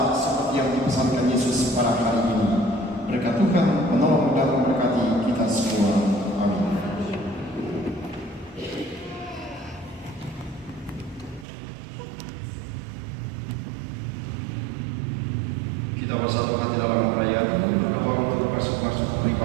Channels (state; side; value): drops out; left; at 11.5 s